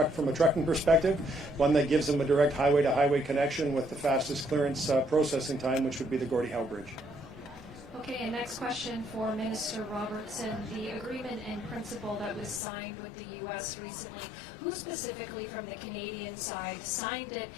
a trucking perspective, one that gives them a direct highway-to-highway connection with the fastest clearance processing time, which would be the Gordie Howe Bridge. Okay, and next question for Minister Robertson. The agreement in principle that was signed with the U.S. recently, who specifically from the Canadian side signed it?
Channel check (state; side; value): drops out; right; at 12.6 s